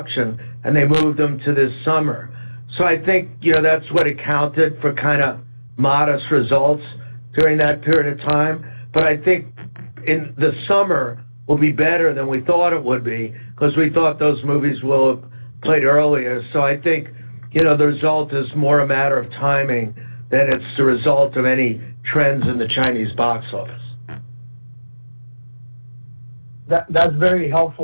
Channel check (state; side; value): inverted; both; correlation -1.00